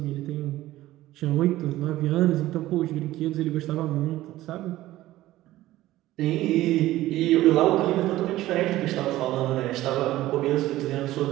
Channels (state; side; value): quieter; left; 15.8 dB